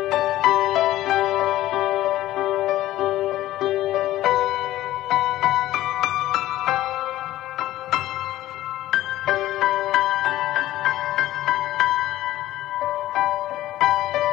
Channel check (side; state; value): right; quieter; 14.9 dB